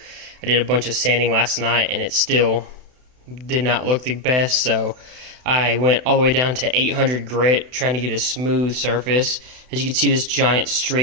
I did a bunch of sanding last night and it still did not look the best, so I went all the way down to 800 grit trying to get a smooth surface. As you can see, this giant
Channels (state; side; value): late; left; 32 ms